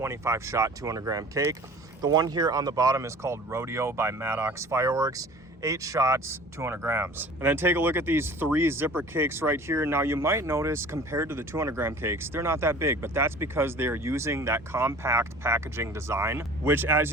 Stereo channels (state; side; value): normal; both; correlation 0.45